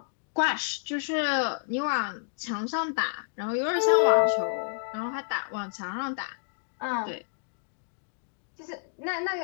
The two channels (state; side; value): silent; right; digital silence